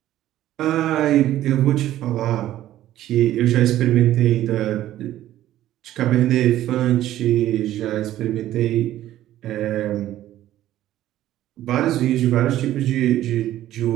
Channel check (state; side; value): quieter; left; 13.4 dB